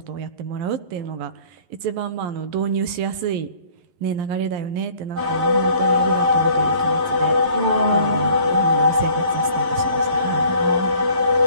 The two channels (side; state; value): left; late; 11 ms